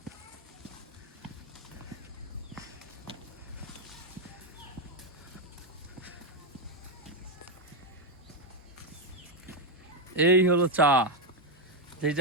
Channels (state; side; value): normal; both; correlation 0.04